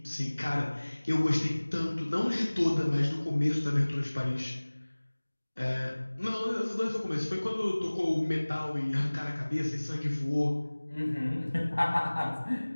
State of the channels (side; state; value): both; inverted; correlation -1.00